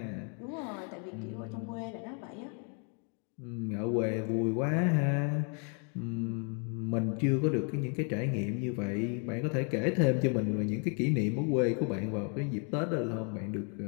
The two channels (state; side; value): quieter; right; 39.7 dB